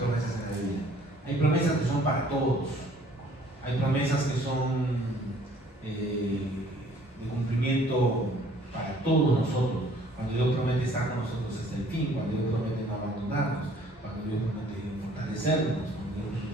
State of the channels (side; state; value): both; normal; correlation 0.57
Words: en la Biblia. Hay promesas que son para todos. Hay promesas que son de cumplimiento para todos nosotros. Cuando Dios promete estar con nosotros hasta el fin, cuando Dios promete no abandonarnos, cuando Dios promete fortalecernos, cuando Dios